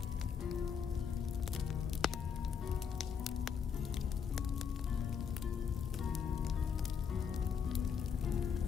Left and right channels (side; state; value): right; quieter; 6.9 dB